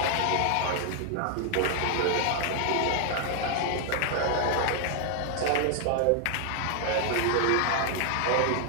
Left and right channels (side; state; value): both; different; correlation 0.00